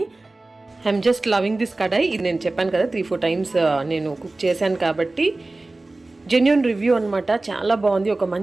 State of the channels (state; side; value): quieter; left; 3.1 dB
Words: ఐఎమ్ జస్ట్ లవింగ్ దిస్ కడాయి. ఇది నేను చెప్పాను కదా 3-4 టైమ్స్ నేను కుక్ చేశాను కాబట్టి జెన్యూన్ రివ్యూ అనమాట. చాలా బాగుంది, ఒక